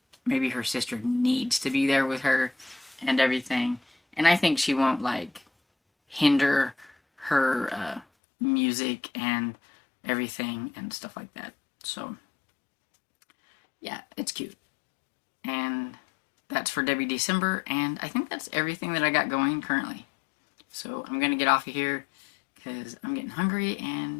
Maybe her sister needs to be there with her and everything. And I think she won't, like, hinder her music and everything and stuff like that. So yeah, it's cute. And that's for Debbie December, and I think that's everything that I got going currently. So I'm gonna get off of here because I'm getting hungry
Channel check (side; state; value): right; drops out; at 8.1 s